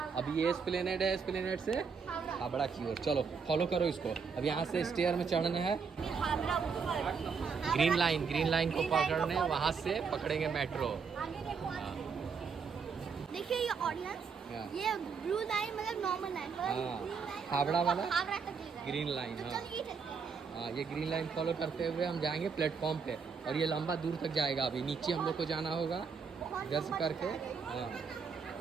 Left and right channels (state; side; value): quieter; left; 5.7 dB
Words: अभी ये एस्प्लेनेड है, एस्प्लेनेड से हावड़ा की ओर चलो, फॉलो करो इसको। अब यहाँ से स्टेयर में चढ़ना है। ग्रीन लाइन को पकड़ने, वहाँ से पकड़ेंगे मेट्रो। देखिए ये ऑडियंस, ये ब्लू लाइन मतलब नॉर्मल लाइन, हावड़ा वाला हावड़ा तक ग्रीन लाइन। तो हाँ चलिए चलते हैं। हाँ, ये ग्रीन लाइन फॉलो करते हुए हम जाएंगे प्लेटफॉर्म पे, और ये लंबा दूर तक जाएगा। अभी नीचे हम लोग को जाना होगा इधर से करके। हाँ,